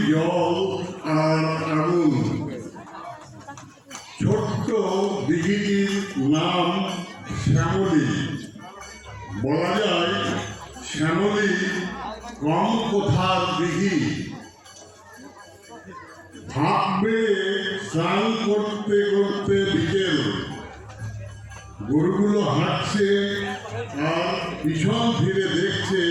জল আর আগুন, ছোট্ট দিঘিটির নাম শ্যামলী। বলা যায় শ্যামলী কম কোথার দিঘি। ভাব বেড়ে স্নান করতে করতে বিকেল, গরুগুলো হাঁটছে আর পিছন ফিরে দেখছে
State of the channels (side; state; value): both; identical; correlation 1.00